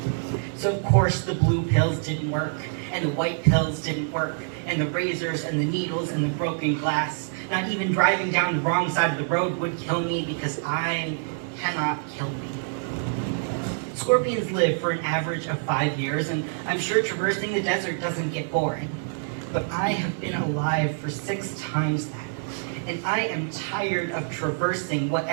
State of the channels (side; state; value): left; silent; digital silence